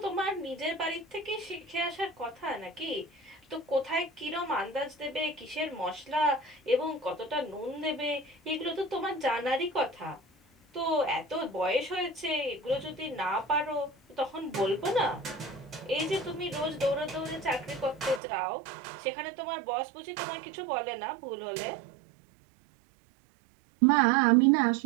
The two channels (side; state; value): left; drops out; at 18.2 s